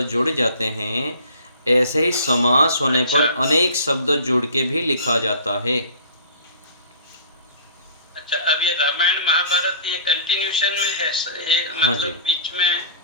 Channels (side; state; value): both; inverted; correlation -0.45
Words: जुड़ जाते हैं, ऐसे ही समास होने पर अनेक शब्द जुड़ के भी लिखा जाता है। अच्छा, अब ये रामायण महाभारत ये कंटिन्यूशन में है, ये हाँ मतलब जी। बीच में